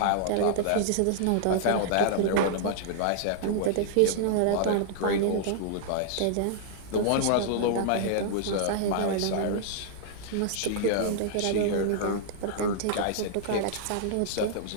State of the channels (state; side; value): different; both; correlation -0.01